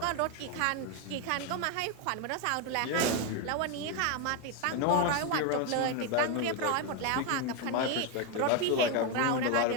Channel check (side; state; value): both; different; correlation 0.01